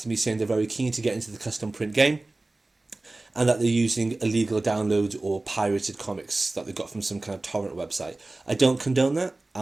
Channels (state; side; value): quieter; left; 3.0 dB